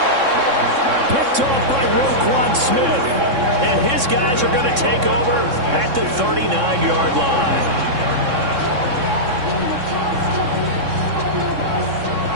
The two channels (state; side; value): late; left; 3.6 ms